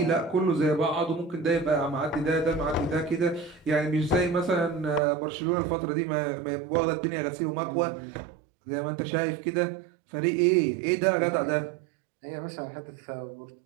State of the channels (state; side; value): drops out; left; at 5.0 s